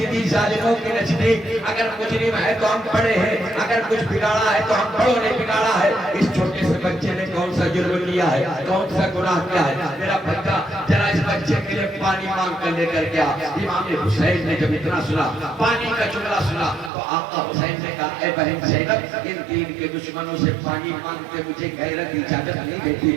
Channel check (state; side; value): drops out; left; at 16.9 s